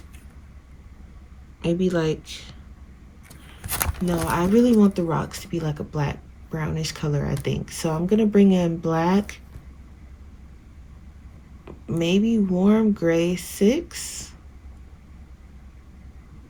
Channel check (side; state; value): both; identical; correlation 1.00